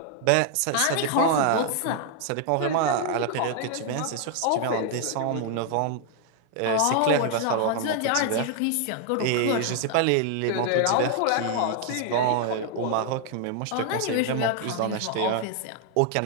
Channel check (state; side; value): different; both; correlation 0.00